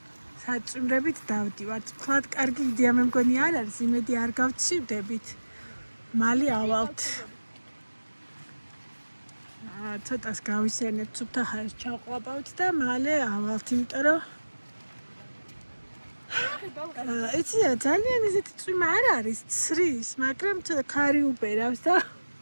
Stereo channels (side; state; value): both; inverted; correlation -1.00